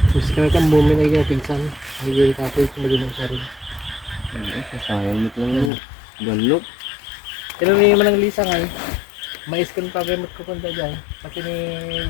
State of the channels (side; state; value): right; drops out; at 5.7 s